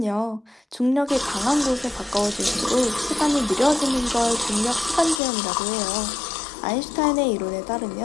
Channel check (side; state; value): right; drops out; at 5.2 s